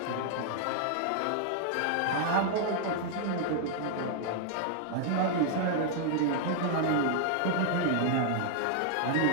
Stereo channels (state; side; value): different; both; correlation 0.00